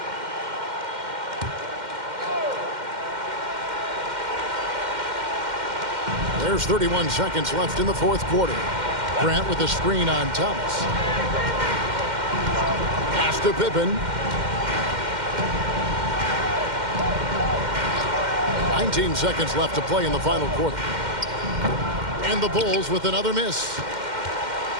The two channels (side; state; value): left; late; 2.1 ms